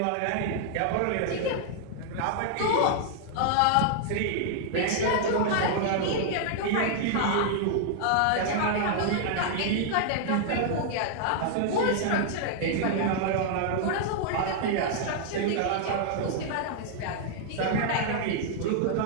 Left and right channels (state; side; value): different; both; correlation -0.01